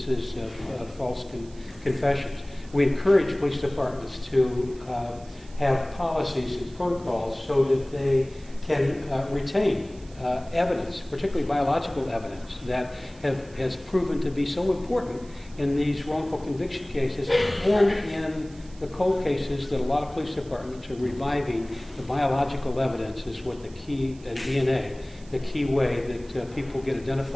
of false confessions. We encourage police departments to have policies and protocols so that they can retain evidence, particularly biological evidence, that has proven to be so important in these wrongful conviction cases and in the cold cases that a lot of police departments are reviving. The biological evidence is what the key, DNA, the key way that people get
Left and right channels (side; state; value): right; noise; hiss, 25 dB below the sound